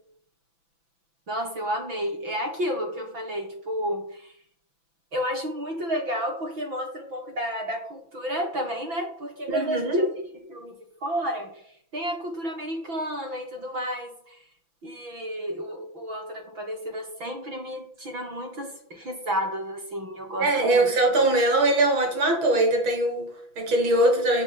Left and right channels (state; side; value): late; left; 6.0 ms